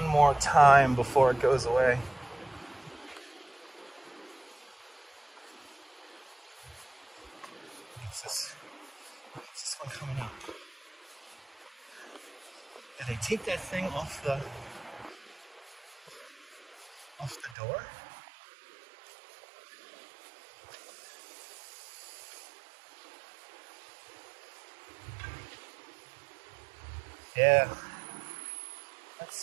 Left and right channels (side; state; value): left; drops out; at 17.6 s